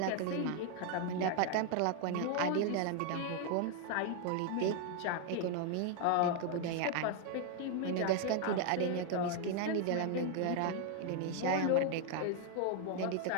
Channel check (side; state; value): both; different; correlation 0.00